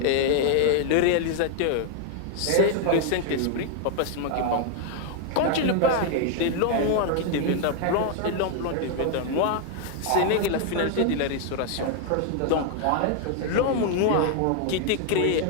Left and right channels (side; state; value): both; different; correlation 0.00